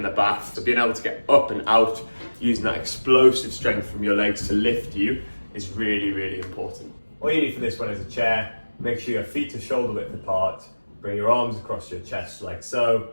the bath. So being able to get up and out using that explosive strength from your legs to lift you is really, really important. All you need for this one is a chair. Make sure your feet are shoulder width apart. Bring your arms across your chest like so.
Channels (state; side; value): inverted; both; correlation -1.00